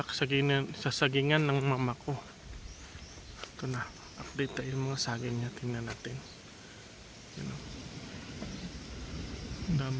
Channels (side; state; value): both; identical; correlation 1.00